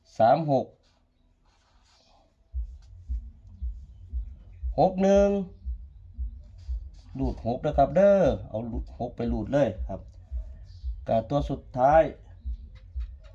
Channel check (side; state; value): both; identical; correlation 1.00